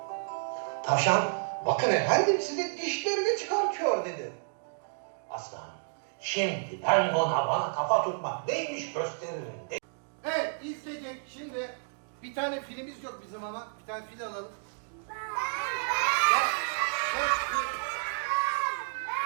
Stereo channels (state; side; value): silent; left; digital silence